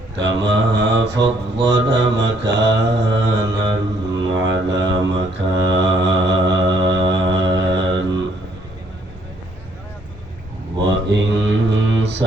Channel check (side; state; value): both; normal; correlation 0.67